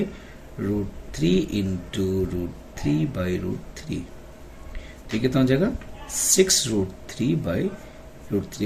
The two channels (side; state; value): both; identical; correlation 1.00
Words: इंटू √3/√3। तो कितना हो जाएगा